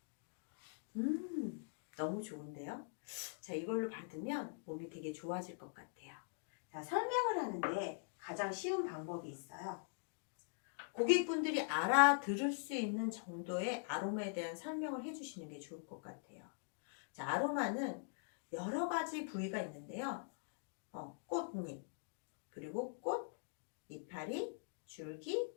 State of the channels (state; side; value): silent; right; digital silence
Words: 너무 좋은데요? 자, 이걸로 받으면 몸이 되게 좋아질 것 같아요. 자, 설명을 하는데 가장 쉬운 방법이 있어요. 고객분들이 알아들을 수 있는 정도의 아로마에 대한 설명을 해주시는 게 좋을 것 같아요. 자, 아로마는 여러 가지 부위가 있는데요. 꽃잎, 그리고 꽃, 이파리, 줄기,